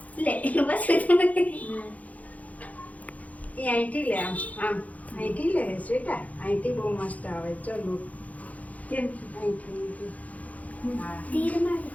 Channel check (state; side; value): late; right; 0.072 ms